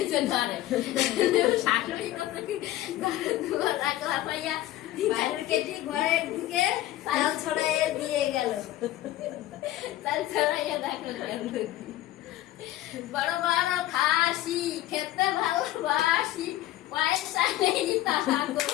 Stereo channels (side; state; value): right; quieter; 15.0 dB